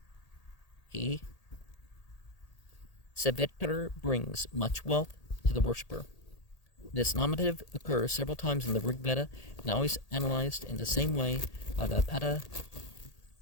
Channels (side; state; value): right; late; 1.8 ms